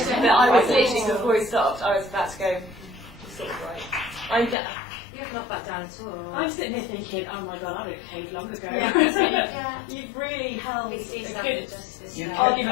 But I was literally, before he stopped, I was about to go, you're sort of right. You have not backed down at all. I'm sitting here thinking, oh my god, I would have caved long ago. Yeah. You've really held a PC's good justice. You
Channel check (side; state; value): right; drops out; at 4.5 s